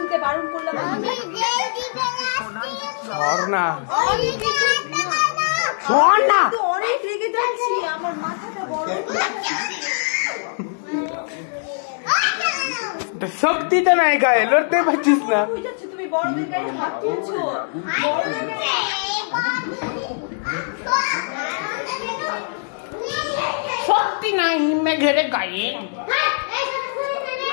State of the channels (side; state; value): right; silent; 64 dB below the other